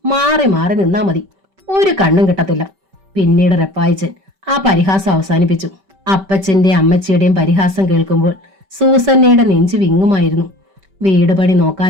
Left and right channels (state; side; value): late; left; 5.2 ms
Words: മാറി മാറി നിന്നാ മതി, ഒരു കണ്ണും കിട്ടത്തില്ല. പിന്നീട് റപ്പായിച്ചൻ ആ പരിഹാസം അവസാനിപ്പിച്ചു. അപ്പച്ചന്റെ അമ്മച്ചിയുടെയും പരിഹാസം കേൾക്കുമ്പോൾ സൂസന്നയുടെ നെഞ്ചു വിങ്ങുമായിരുന്നു. വീട് പണി